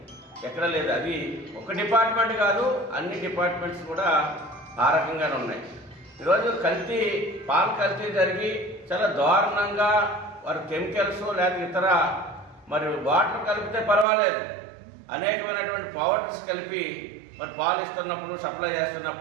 ఎక్కడ లేదు. అది ఒక డిపార్ట్మెంట్ కాదు, అన్ని డిపార్ట్మెంట్స్ కూడా ఆ రకంగానే ఉన్నాయి. ఈరోజు పాలు కల్తీ జరిగి చాలా దారుణంగా వారు కెమికల్స్ లేదా ఇతర మరి వాటర్ కలిపితే పర్వాలేదు, అనేకమైనటువంటి పౌడర్స్ కలిపి మరి పాలు ఇస్తున్నప్పుడు, సప్లై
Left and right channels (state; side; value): drops out; left; at 14.1 s